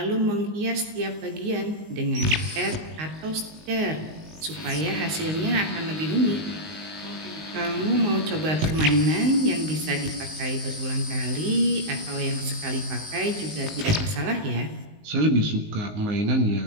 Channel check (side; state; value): left; late; 19 ms